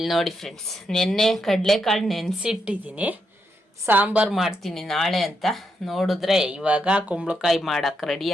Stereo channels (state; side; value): normal; both; correlation 0.81